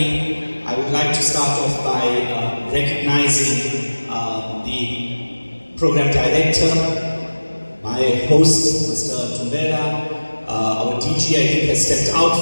I would like to start off by recognizing the program director, my host, Mr. Tumela, our DG, I think, has stepped out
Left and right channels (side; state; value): both; inverted; correlation -1.00